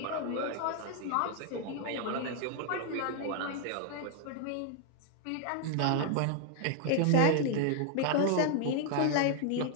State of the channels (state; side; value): different; both; correlation 0.00